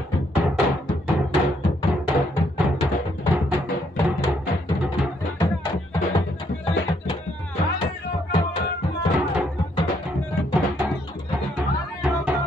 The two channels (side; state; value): both; normal; correlation 0.71